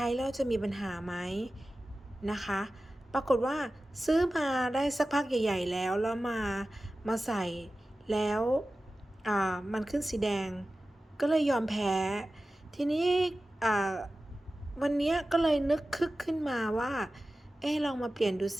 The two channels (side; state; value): both; normal; correlation 0.95